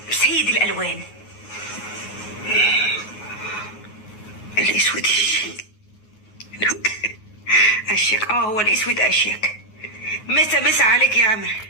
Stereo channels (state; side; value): late; right; 9.5 ms